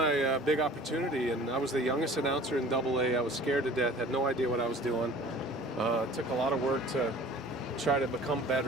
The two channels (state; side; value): normal; both; correlation 0.46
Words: big opportunity, and I was the youngest announcer in AA. I was scared to death, had no idea what I was doing. It took a lot of work to try to become